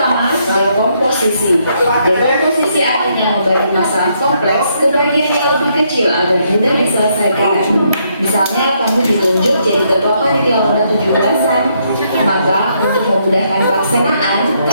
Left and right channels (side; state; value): both; inverted; correlation -0.74